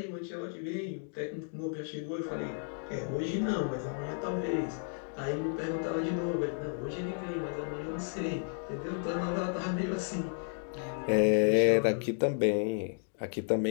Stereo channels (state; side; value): silent; right; 56 dB below the other